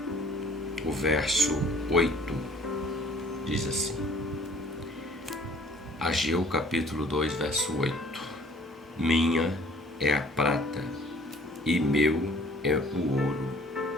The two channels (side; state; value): both; normal; correlation 0.54